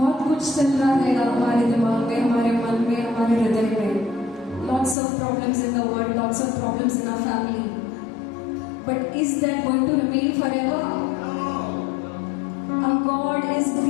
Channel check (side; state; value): right; drops out; at 5.0 s